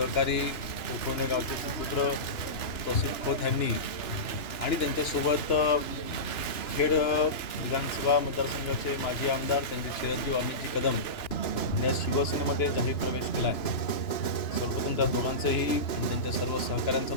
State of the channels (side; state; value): right; late; 2.9 ms